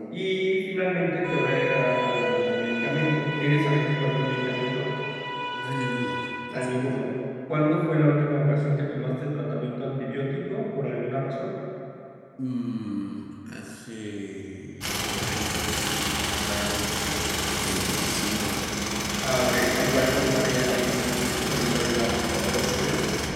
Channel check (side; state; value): both; identical; correlation 1.00